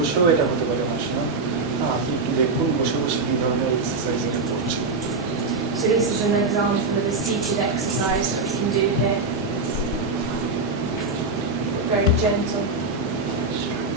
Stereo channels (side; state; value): left; quieter; 3.7 dB